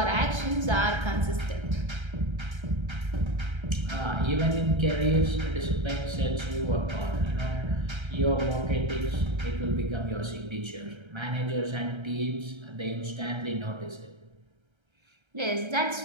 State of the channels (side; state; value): left; late; 1.3 ms